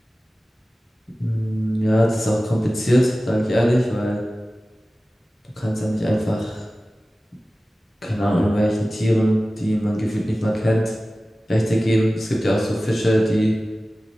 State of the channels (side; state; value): both; normal; correlation 0.96